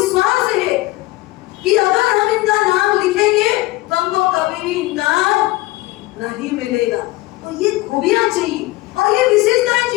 है कि अगर हम इनका नाम लिखेंगे तो हमको कभी भी इनकार नहीं मिलेगा। तो ये खूबियां चाहिए और ये विशेषताएं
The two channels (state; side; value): quieter; right; 19.6 dB